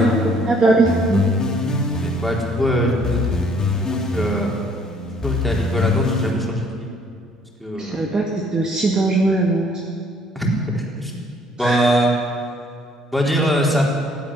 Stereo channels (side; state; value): both; normal; correlation 0.61